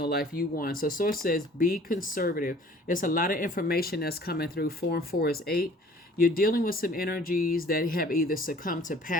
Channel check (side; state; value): both; normal; correlation 0.52